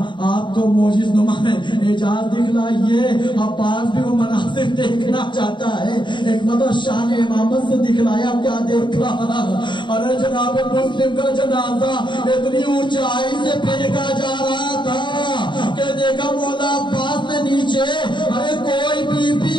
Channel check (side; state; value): right; late; 0.23 ms